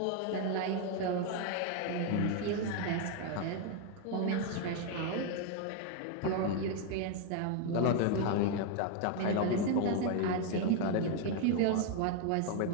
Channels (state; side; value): different; both; correlation 0.01